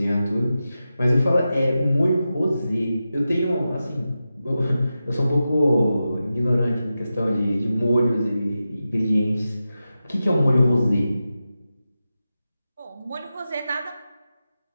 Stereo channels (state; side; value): inverted; both; correlation -0.92